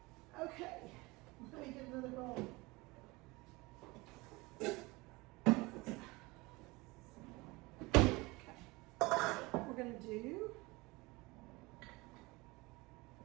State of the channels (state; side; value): quieter; left; 23.3 dB